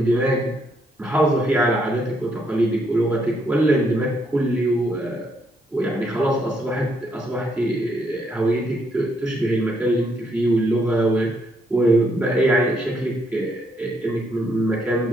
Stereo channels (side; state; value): both; normal; correlation 0.74